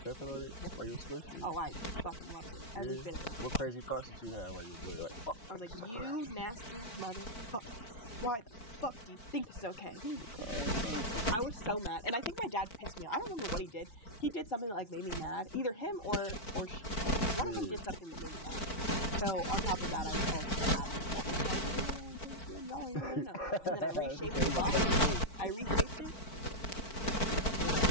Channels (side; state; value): right; late; 4.5 ms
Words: on it? Yep. While you were squishing it? Oh, I fucking loved it. Every bit of it. What crazy thoughts did you have while you were doing it? Like, fuck. I was like, you nasty motherfuckers. Why the fuck do you think this is okay? He was a cold person. I was so mad. And I think my dad pissed me off. I don't remember what he did. He did something that like made me mad. Either him or her. One of them did something that made me mad. So on top of that, I also had an attitude problem. So I was like, oh yeah, y'all want to play this game? Y'all aren't even going to know. And then I reshaped the box. I reshaped it. And then I